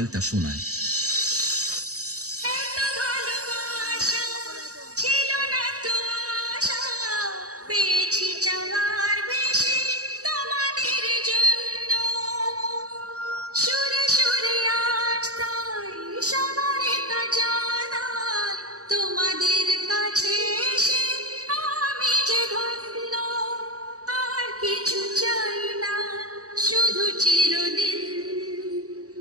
শোনায়। তোমাদের কাছে আমি যে ধন্য, আর কিছু চাই না, শুধু চিরদিন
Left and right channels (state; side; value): late; left; 0.66 ms